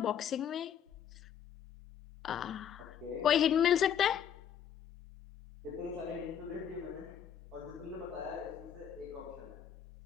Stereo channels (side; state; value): right; quieter; 8.9 dB